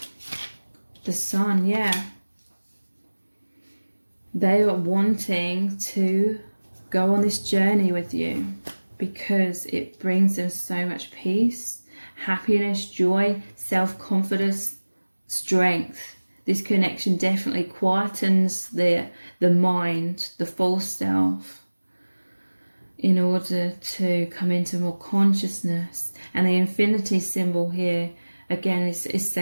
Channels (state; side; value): inverted; both; correlation -1.00